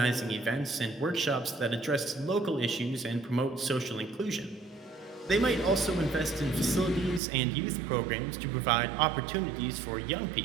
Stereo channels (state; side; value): drops out; left; at 7.2 s